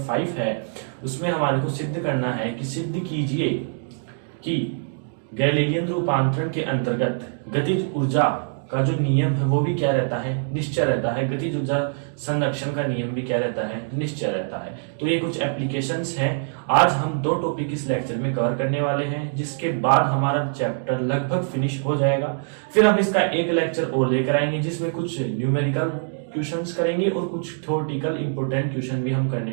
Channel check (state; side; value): silent; left; digital silence